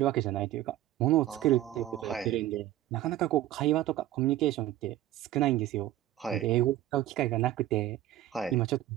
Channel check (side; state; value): left; quieter; 13.8 dB